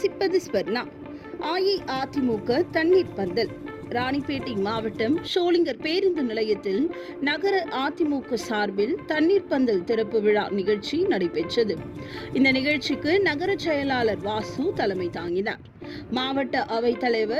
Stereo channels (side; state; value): both; identical; correlation 1.00